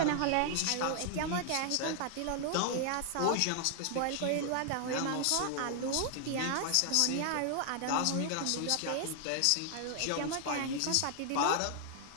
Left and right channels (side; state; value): both; different; correlation 0.00